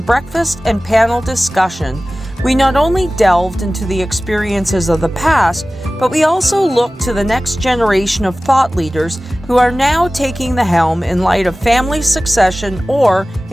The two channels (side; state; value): both; normal; correlation 0.97